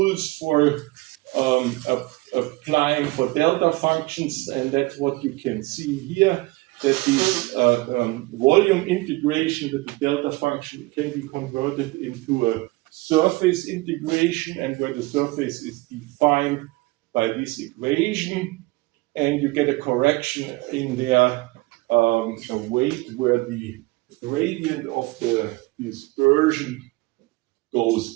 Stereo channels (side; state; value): left; quieter; 22.4 dB